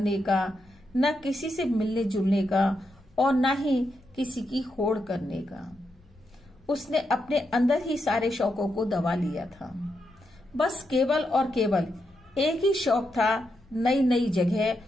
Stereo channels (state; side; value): noise; left; rumble, 28 dB below the sound